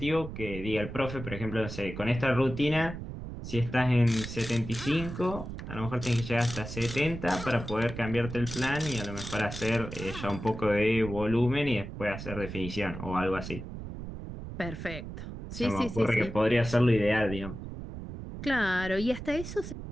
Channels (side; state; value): right; noise; rumble, 9 dB below the sound